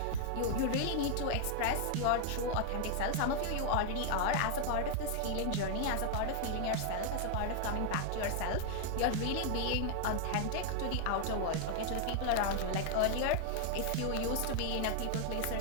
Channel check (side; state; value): both; different; correlation 0.00